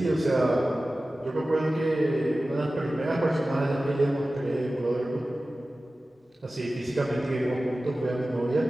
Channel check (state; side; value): normal; both; correlation 0.96